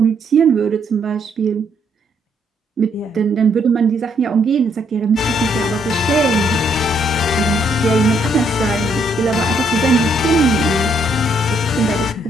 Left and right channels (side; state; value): both; normal; correlation 0.71